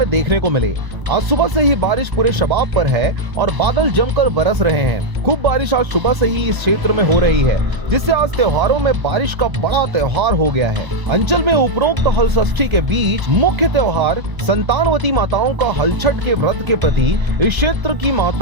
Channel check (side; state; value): left; late; 1.0 ms